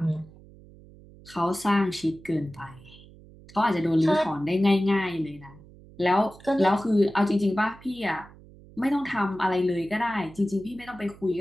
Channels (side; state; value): right; noise; hum, 22 dB below the sound